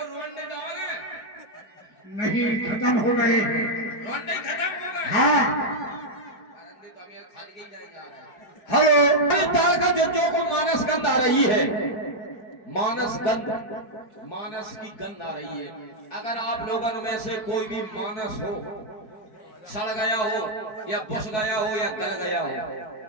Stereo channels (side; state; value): right; late; 4.5 ms